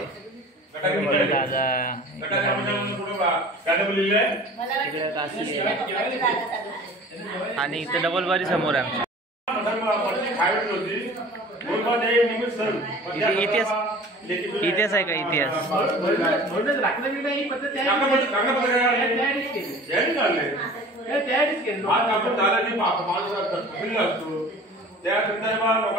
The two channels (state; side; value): normal; both; correlation 0.43